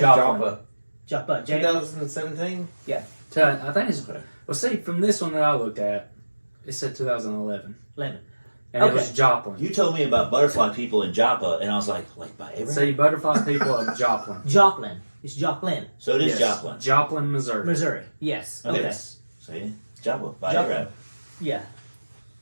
Joplin. 2017? Yeah. I think it's. Okay. Well, see, from this one that I looked at, it said 2011. 11. And Okay. it was Joplin. You told me about butterfly people in Joppa, and I was like by Abraham? See, butterfly people of Joplin. Joplin. It's Joplin, So it is Yes. Joplin. Joplin, Missouri. Missouri. Yes. Okay. Yes. See? Joppa. By Joplin. Abraham. Yeah.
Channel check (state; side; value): inverted; both; correlation -1.00